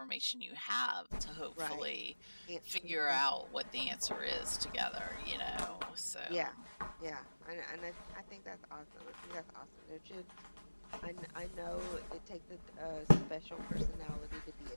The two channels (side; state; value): both; inverted; correlation -1.00